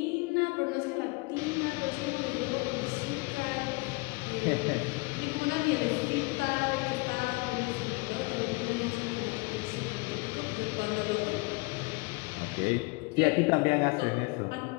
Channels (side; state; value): right; quieter; 26.9 dB